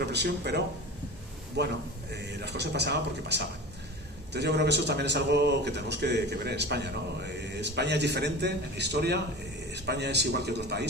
pero bueno, las cosas pasaban porque pasaban. Entonces yo creo que eso también es algo que tenemos que ver en España, ¿no? España es diferente en la historia, España es igual que otros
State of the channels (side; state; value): both; normal; correlation 0.33